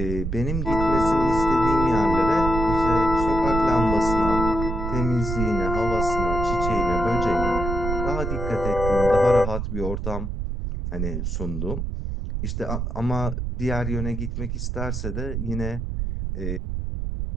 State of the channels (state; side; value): noise; right; rumble, 3 dB below the sound